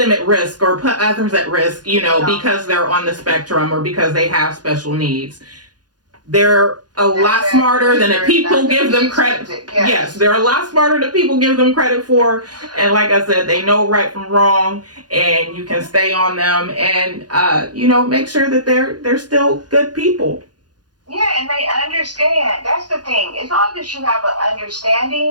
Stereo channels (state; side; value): late; left; 0.69 ms